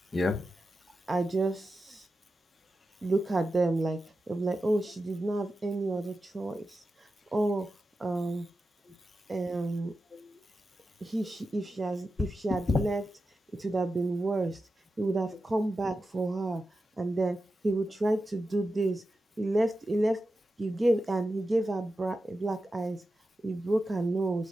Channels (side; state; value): both; normal; correlation 0.91